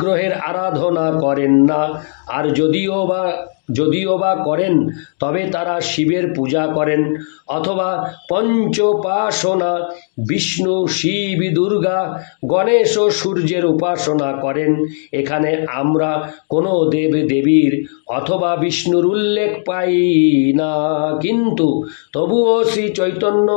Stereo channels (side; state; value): right; silent; digital silence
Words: আরাধনা করেন না, আর যদিও বা করেন তবে তারা শিবের পূজা করেন অথবা পঞ্চোপাসনা, বিষ্ণু, শিব, দুর্গা, গণেশ ও সূর্যের উপাসনা করেন। এখানে আমরা কোনো দেব দেবীর অথবা বিষ্ণুর উল্লেখ পাই না, কিন্তু তবুও শ্রী চৈতন্য